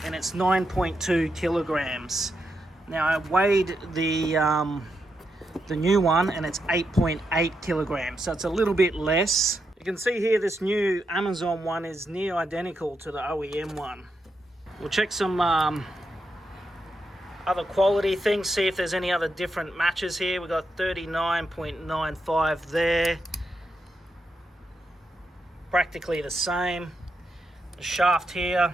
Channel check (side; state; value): both; normal; correlation 0.84